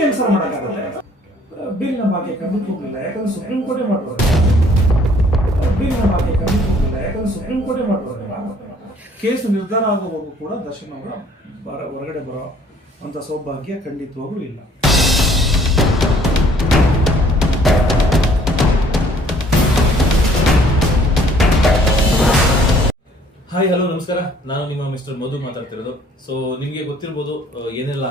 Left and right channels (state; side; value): normal; both; correlation 0.59